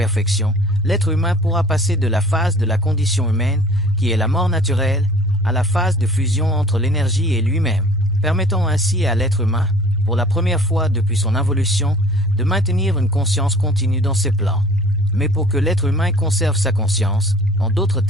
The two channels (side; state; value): both; normal; correlation 0.48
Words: l'être humain pourra passer de la phase de la condition humaine, qui est la mort naturelle, à la phase de fusion entre l'énergie et lui-même, permettant ainsi à l'être humain, pour la première fois depuis son involution, de maintenir une conscience continue dans ses plans. Mais pour que l'être humain conserve sa conscience, en d'autres